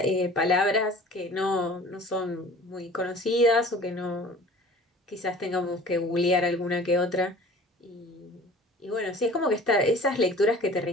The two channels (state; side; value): normal; both; correlation 0.46